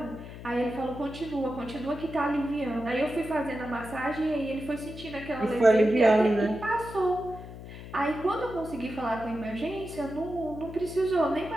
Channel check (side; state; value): left; noise; hum, 13 dB below the sound